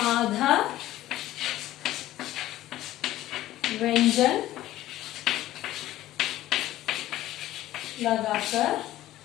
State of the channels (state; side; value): quieter; right; 14.7 dB